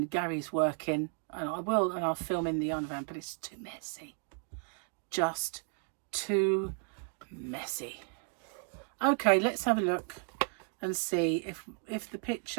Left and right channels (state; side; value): quieter; left; 38.0 dB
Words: Gary's working, and I will, and I'll film in the Yarnavan, but it's too messy. Just too messy. Okay, let's have a look and see if the